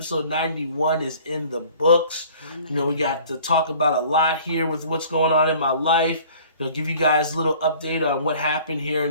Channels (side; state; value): both; inverted; correlation -0.50